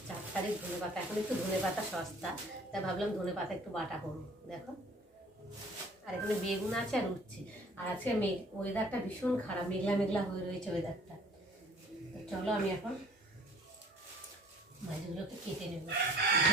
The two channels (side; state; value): both; normal; correlation 0.52